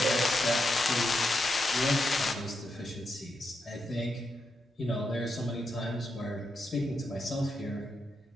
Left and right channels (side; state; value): both; normal; correlation 0.84